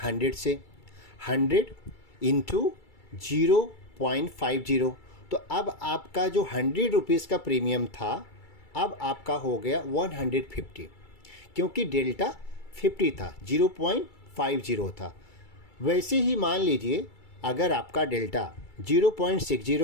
से, 100 इंटू 0.50। तो अब आपका जो 100 रुपीज़ का प्रीमियम था, अब आपका हो गया 150, क्योंकि डेल्टा 50 था, 0.50 था। वैसे ही मान लीजिए अगर आपका डेल्टा 0.60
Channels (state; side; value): late; right; 2.3 ms